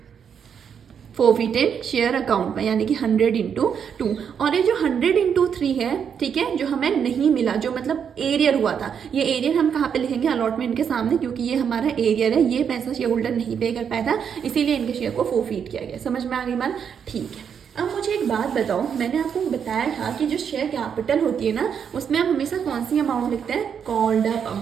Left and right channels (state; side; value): quieter; left; 7.5 dB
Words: फोरफिटेड शेयर अकाउंट में, यानी कि 100 × 2। और ये जो 100 × 3 है, ठीक है, जो हमें नहीं मिला, जो मतलब एरियर हुआ था, ये एरियर हम कहाँ पे लिखेंगे, अलॉटमेंट के सामने, क्योंकि ये हमारा एरियर है, ये पैसा शेयर होल्डर नहीं पे कर पाया था, इसीलिए इनके शेयर को फोरफिट किया गया। समझ में आ गई बात, ठीक है। अब मुझे एक बात बताओ, मैंने आपको बताया था कि जो शेयर कैपिटल होती है ना, उसमें हम हमेशा कौन सी अमाउंट लिखते हैं, कॉल्ड अप